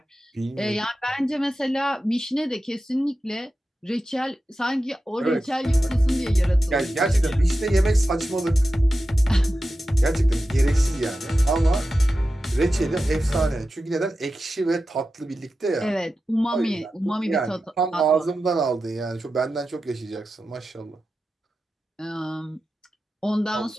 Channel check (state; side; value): normal; both; correlation 0.92